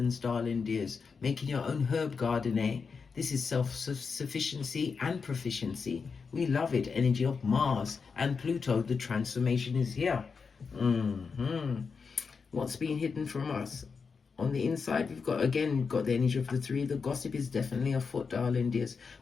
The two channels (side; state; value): right; quieter; 5.3 dB